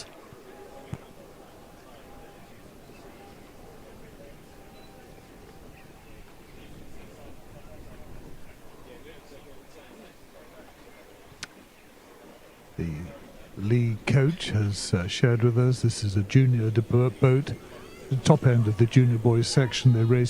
The Lee coach has shared with us this is a junior boat. The top end of the junior boys section, they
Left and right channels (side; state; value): both; identical; correlation 1.00